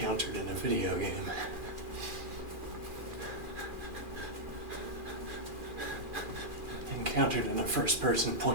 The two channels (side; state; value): left; late; 2.4 ms